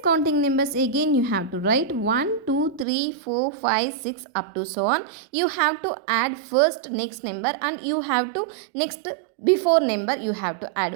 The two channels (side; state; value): left; drops out; at 2.9 s